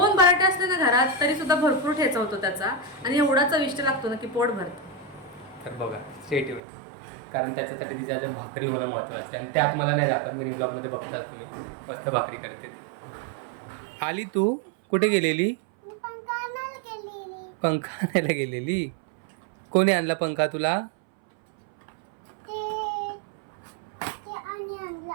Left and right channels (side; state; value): left; drops out; at 6.6 s